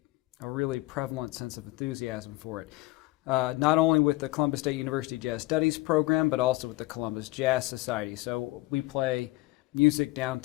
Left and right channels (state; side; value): quieter; right; 20.4 dB